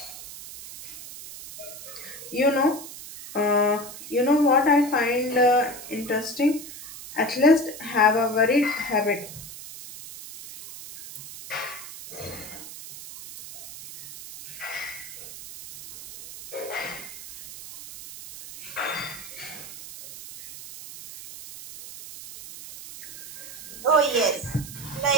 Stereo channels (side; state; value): right; noise; hiss, 13 dB below the sound